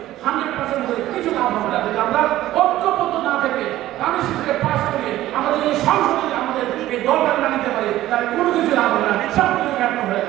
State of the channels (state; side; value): quieter; left; 14.7 dB